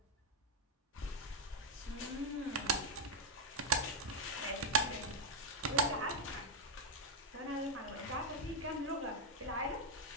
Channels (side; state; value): both; normal; correlation 0.01